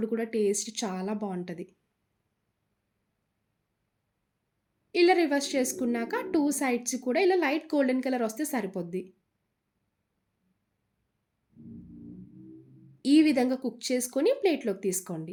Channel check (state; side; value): identical; both; correlation 1.00